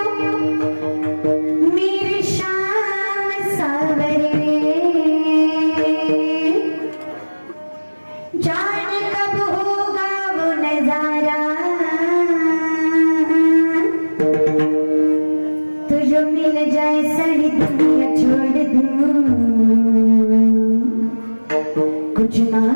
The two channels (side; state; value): both; inverted; correlation -1.00